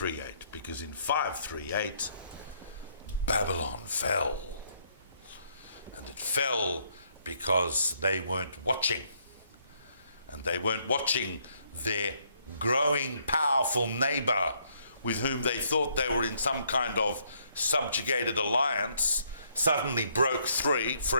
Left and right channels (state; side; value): inverted; both; correlation -0.70